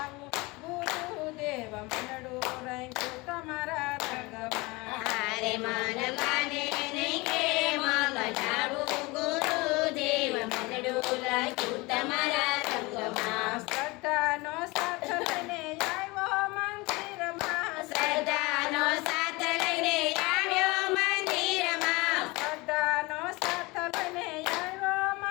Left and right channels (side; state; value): right; quieter; 24.1 dB